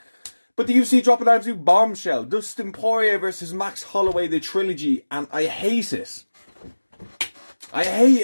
But the UFC dropped an absolute bombshell. Dustin Poirier versus Max Holloway, the trilogy, and I hate it. I hate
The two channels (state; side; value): inverted; both; correlation -1.00